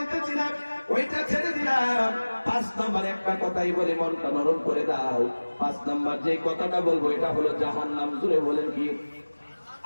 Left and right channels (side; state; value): both; inverted; correlation -1.00